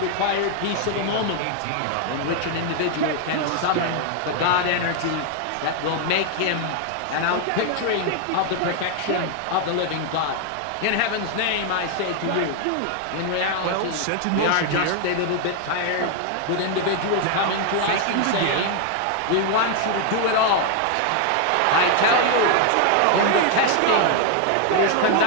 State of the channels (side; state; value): both; different; correlation 0.00